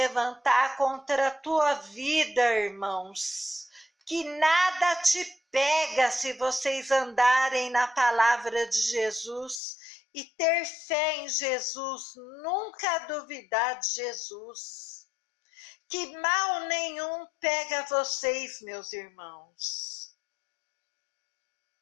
contra a tua vida, irmãos, que nada te pega se vocês andarem na palavra de Jesus e ter fé em Jesus, nunca duvidar de Jesus. Que mal nenhum pega vocês, meus irmãos.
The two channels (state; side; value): drops out; right; at 9.6 s